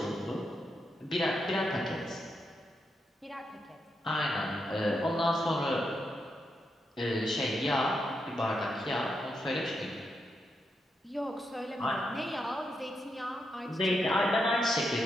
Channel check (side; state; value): both; normal; correlation 0.83